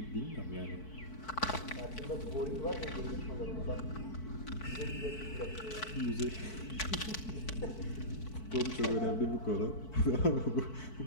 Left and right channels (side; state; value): right; late; 4.6 ms